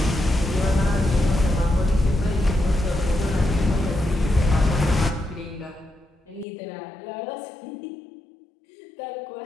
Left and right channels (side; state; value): right; drops out; at 6.5 s